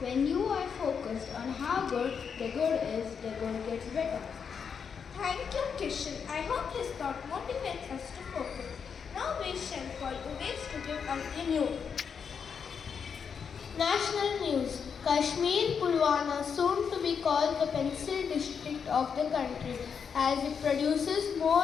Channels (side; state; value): right; quieter; 6.6 dB